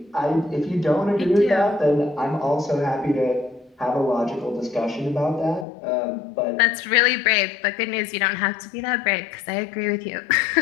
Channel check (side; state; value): right; drops out; at 5.7 s